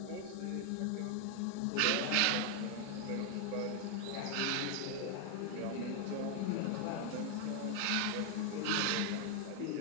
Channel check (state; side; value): different; both; correlation 0.01